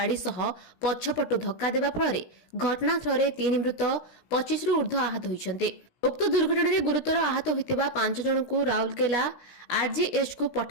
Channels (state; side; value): late; right; 17 ms